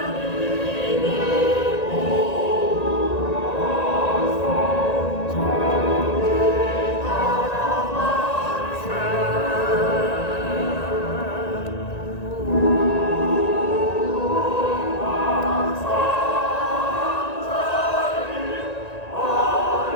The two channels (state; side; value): late; right; 1.9 ms